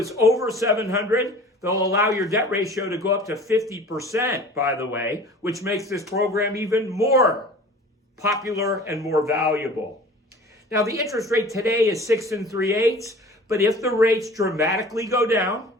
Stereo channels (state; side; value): normal; both; correlation 0.44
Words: over 700, they'll allow your debt ratio to go up to 50%, by the way, which makes this program even more popular and more valuable. Now, the interest rate today is 6 3/8, but if the rates dramatically go down